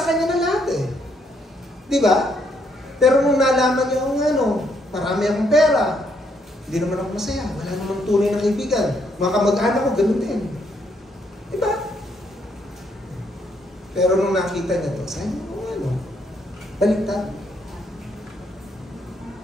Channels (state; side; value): normal; both; correlation 0.73